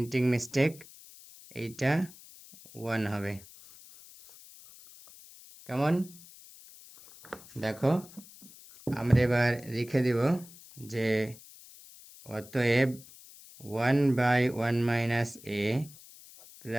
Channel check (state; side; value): noise; left; hiss, 20 dB below the sound